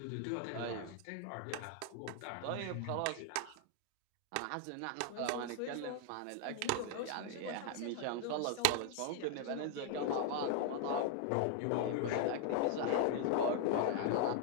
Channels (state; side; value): different; both; correlation 0.00